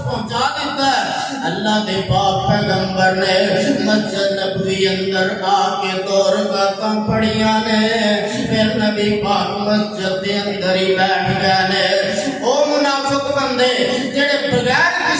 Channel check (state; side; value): identical; both; correlation 1.00